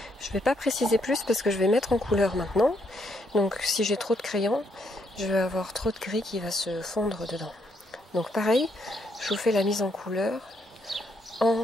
Je vais pas préciser plus parce que je vais mettre en couleur maintenant. Donc si j'ai trop de crayon, je vais avoir trop de gris qui va se fondre dedans. Donc pareil, je vous fais la mise en couleur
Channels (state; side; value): normal; both; correlation 0.75